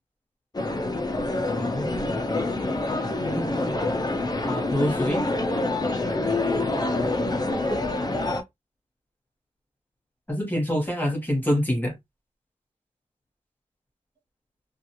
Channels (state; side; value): normal; both; correlation 0.80